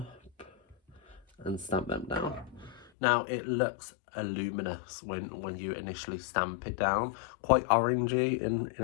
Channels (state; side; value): drops out; right; at 2.9 s